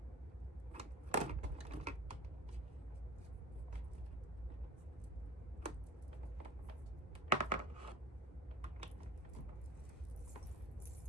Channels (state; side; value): normal; both; correlation 0.39